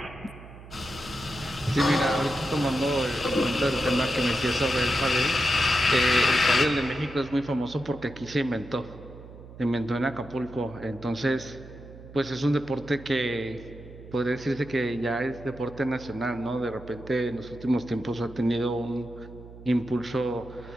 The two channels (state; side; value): noise; right; hum, 17 dB below the sound